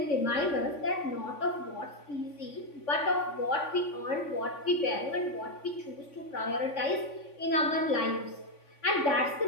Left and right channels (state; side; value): late; right; 3.5 ms